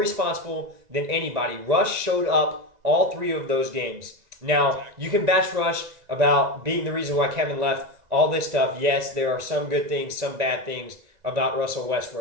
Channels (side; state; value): left; late; 2.0 ms